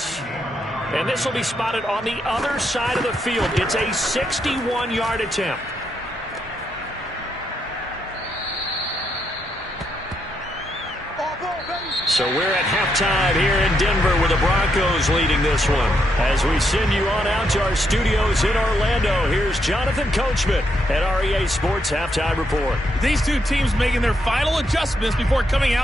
And this will be spotted on the other side of the field. It's a 61-yard attempt. So we're at halftime here in Denver with the Broncos leading this one. As we send you on out to our studios in Orlando, here's Jonathan Coachman at REA Sports Halftime Report. These two teams making their final adjustments before coming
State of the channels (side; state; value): both; normal; correlation 0.79